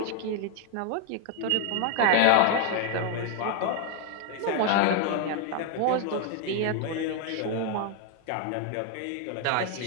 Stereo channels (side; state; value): both; different; correlation 0.01